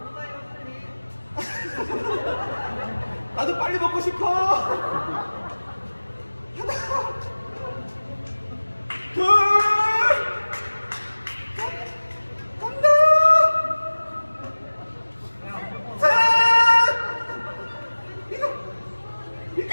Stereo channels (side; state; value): both; inverted; correlation -1.00